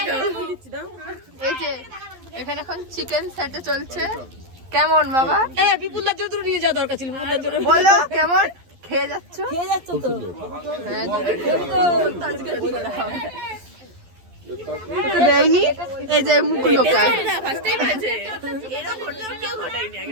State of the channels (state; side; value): late; left; 11 ms